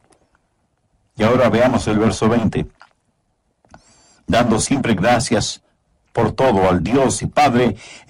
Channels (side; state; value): both; identical; correlation 1.00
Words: Y ahora veamos el verso 20. Dando siempre gracias por todo al Dios y Padre